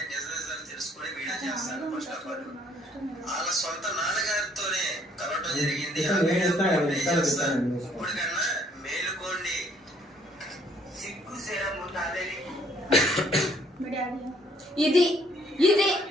నిజాలు తెలుసుకుని వీడియో చేస్తాను. ఫస్ట్ ఆఫ్ ఆల్ వాళ్ళ సొంత నాన్నగారితోనే కలవటం జరిగింది. ఇప్పుడు కన్నా మేలుకోండి, సిగ్గు శరం ఉండాలి. ఇది ఇది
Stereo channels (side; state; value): both; normal; correlation 0.63